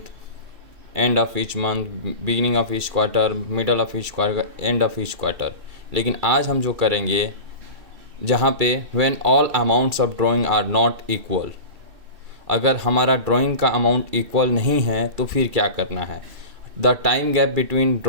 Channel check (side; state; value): left; late; 2.6 ms